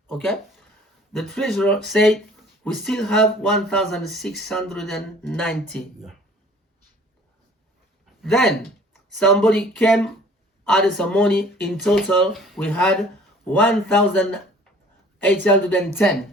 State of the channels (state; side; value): normal; both; correlation 0.51